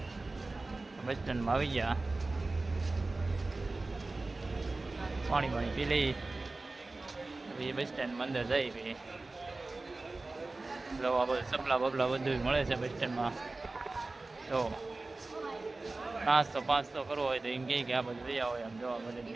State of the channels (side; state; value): left; quieter; 3.3 dB